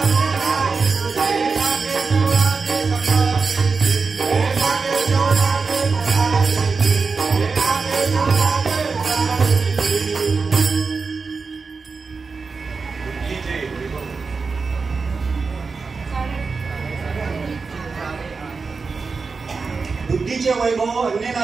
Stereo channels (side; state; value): left; quieter; 4.6 dB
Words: बुद्धीचे वैभव अन्य